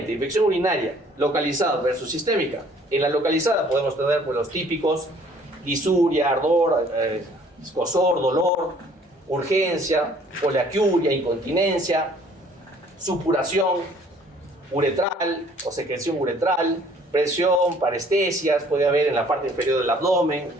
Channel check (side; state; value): both; normal; correlation 0.57